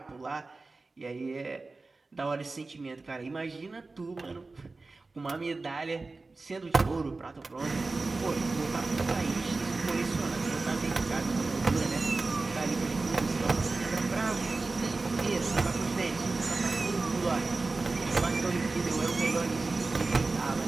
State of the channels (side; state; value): left; quieter; 3.6 dB